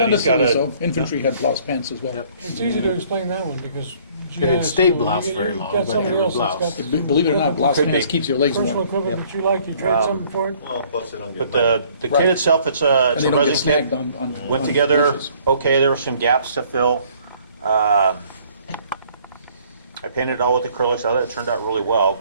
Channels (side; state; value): both; inverted; correlation -0.59